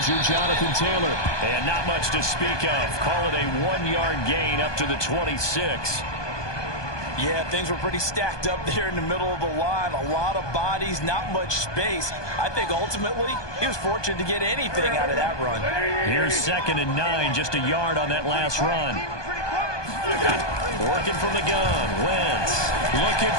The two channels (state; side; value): late; right; 1.2 ms